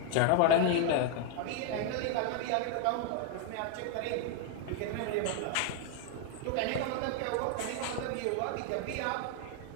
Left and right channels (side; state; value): both; different; correlation 0.00